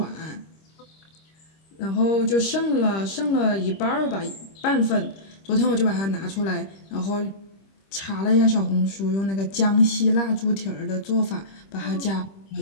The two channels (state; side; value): late; right; 26 ms